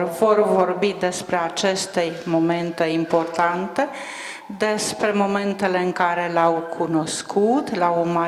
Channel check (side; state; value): both; identical; correlation 1.00